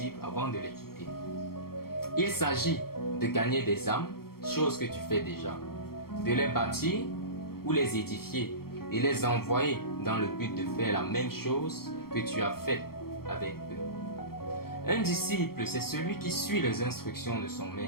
avant de les quitter. Il s'agit de gagner des âmes, chose que tu fais déjà, de les bâtir ou les édifier et les envoyer dans le but de faire la même chose que tu as fait avec eux. Un disciple, c'est celui qui suit les instructions de son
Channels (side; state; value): right; late; 0.94 ms